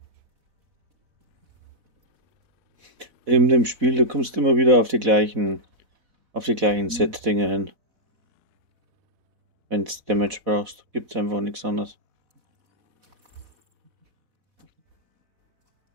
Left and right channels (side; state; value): left; late; 4.1 ms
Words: In dem Spiel, du kommst immer wieder auf die gleichen Set-Dinge hin. Wenn du Damage brauchst, gibt es einfach nichts anderes.